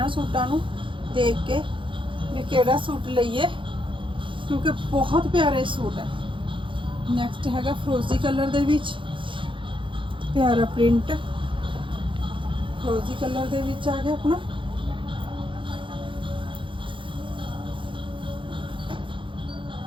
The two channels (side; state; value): left; late; 0.24 ms